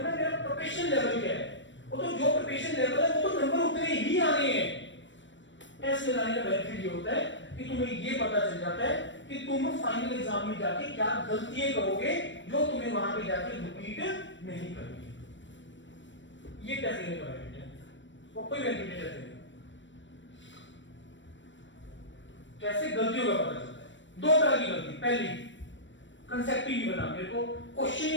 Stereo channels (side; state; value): right; late; 0.54 ms